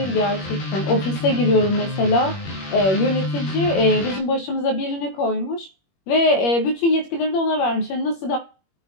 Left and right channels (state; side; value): late; right; 21 ms